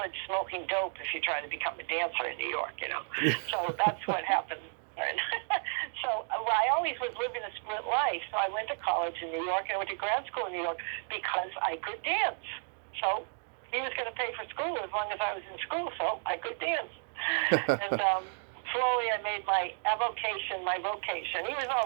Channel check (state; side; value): silent; left; 55 dB below the other